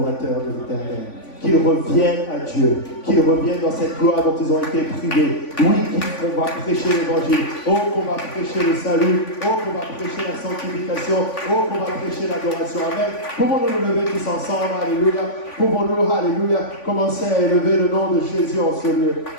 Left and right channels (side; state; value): right; late; 3.5 ms